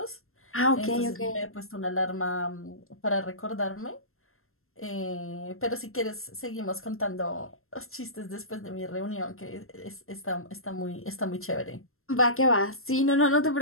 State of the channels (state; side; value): late; right; 0.62 ms